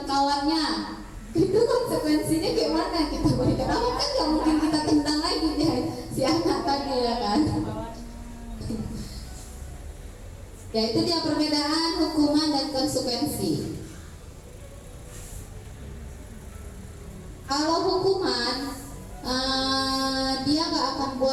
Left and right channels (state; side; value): identical; both; correlation 1.00